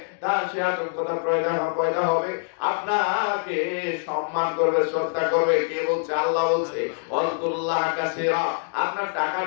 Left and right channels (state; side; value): silent; right; digital silence